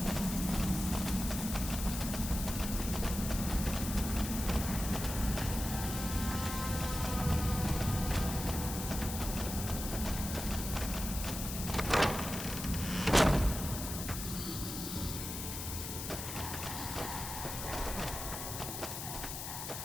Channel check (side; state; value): left; noise; hiss, 6 dB below the sound